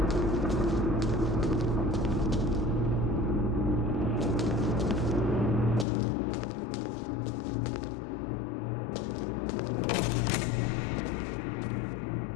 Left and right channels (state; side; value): drops out; right; at 5.9 s